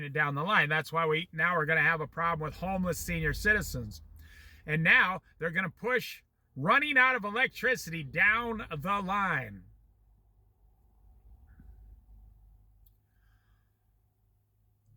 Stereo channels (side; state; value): both; identical; correlation 1.00